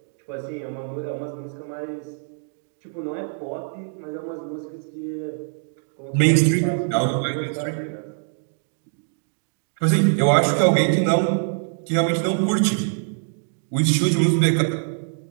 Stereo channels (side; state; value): left; silent; digital silence